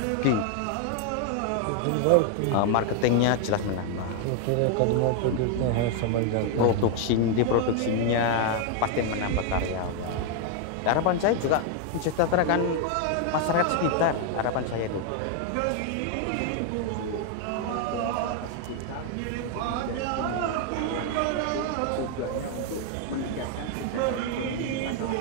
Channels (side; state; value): both; different; correlation 0.00